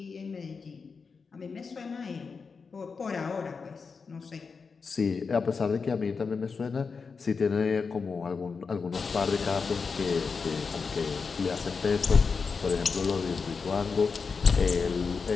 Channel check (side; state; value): right; quieter; 5.1 dB